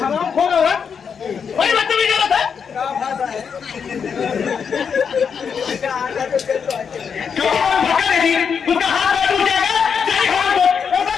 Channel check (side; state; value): right; quieter; 6.6 dB